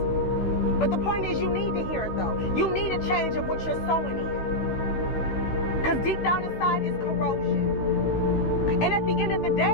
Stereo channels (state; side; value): late; right; 16 ms